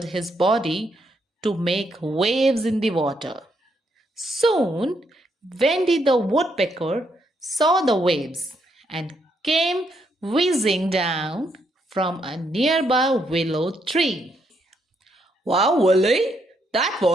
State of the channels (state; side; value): normal; both; correlation 0.76